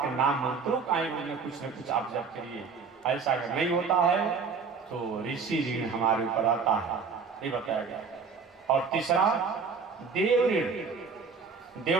नाम मंत्रों का ही कुछ न कुछ आप जप करिए। ऐसा अगर नहीं होता है तो ऋषि ऋण हमारे ऊपर आता है, ये बताया गया। और तीसरा देव ऋण।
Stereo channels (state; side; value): quieter; left; 5.3 dB